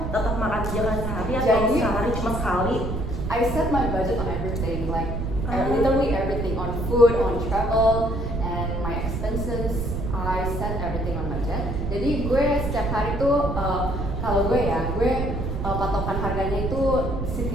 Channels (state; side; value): noise; right; rumble, 3 dB below the sound